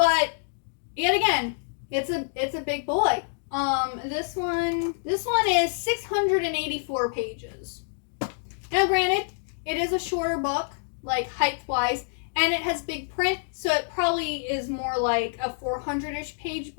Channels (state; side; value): silent; right; digital silence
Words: yet again, it's a big boy. This one is 684 pages. Now, granted, it is a shorter book, like height-wise, and it has big print, so it probably is more like a 400-ish page